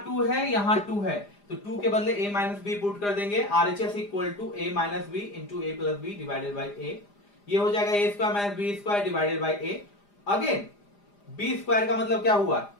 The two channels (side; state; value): right; late; 4.9 ms